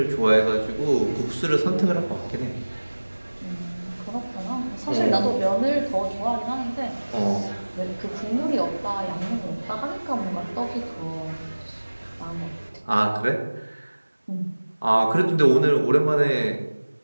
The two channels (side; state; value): both; inverted; correlation -1.00